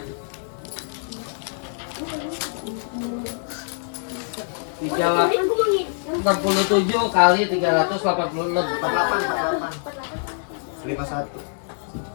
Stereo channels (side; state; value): right; silent; digital silence